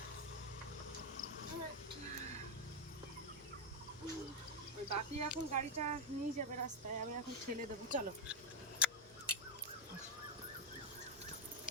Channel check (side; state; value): both; normal; correlation 0.03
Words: ওই বাপি এখন গাড়িটা নিয়ে যাবে রাস্তায়, আমি এখন ঠেলে দেবো। চলো।